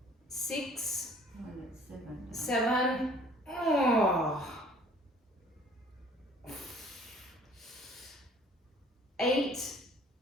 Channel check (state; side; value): normal; both; correlation 0.54